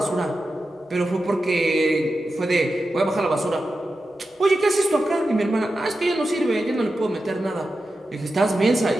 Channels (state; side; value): normal; both; correlation 0.91